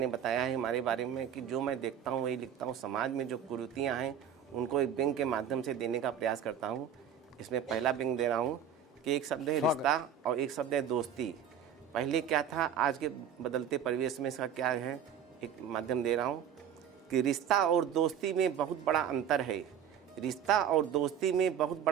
बताया है हमारे बारे में कि जो मैं देखता हूँ वही लिखता हूँ। समाज में जो कुरीतियाँ हैं उनको एक व्यंग्य के माध्यम से देने का प्रयास करता हूँ। इसमें पहला व्यंग्य दे रहा हूँ कि एक शब्द है रिश्ता और एक शब्द है दोस्ती। पहले क्या था, आज के बदलते परिवेश में इसका क्या है, एक माध्यम दे रहा हूँ कि रिश्ता और दोस्ती में बहुत बड़ा अंतर है। रिश्ता और दोस्ती में बहुत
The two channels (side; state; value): left; quieter; 8.4 dB